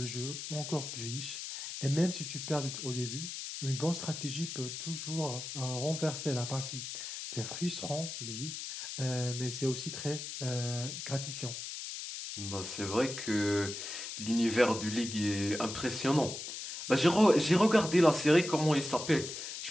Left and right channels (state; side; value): noise; left; hiss, 7 dB below the sound